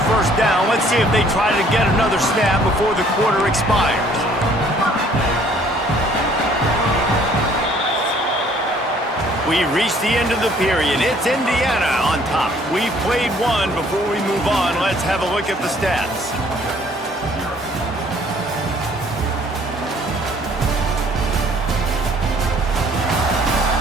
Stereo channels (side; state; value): both; normal; correlation 0.59